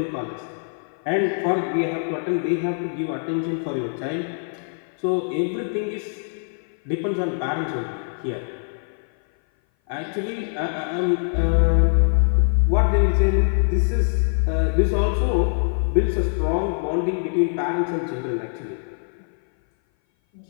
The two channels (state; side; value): silent; right; 58 dB below the other